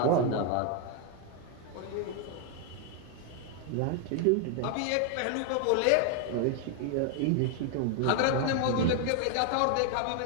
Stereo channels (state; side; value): different; both; correlation 0.00